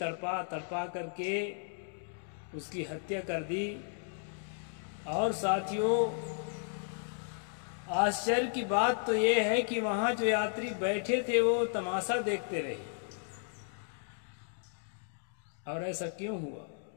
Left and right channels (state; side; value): silent; right; digital silence